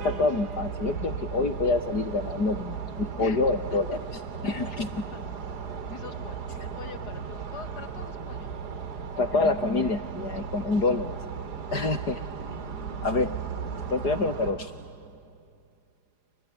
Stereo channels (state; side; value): late; right; 4.9 ms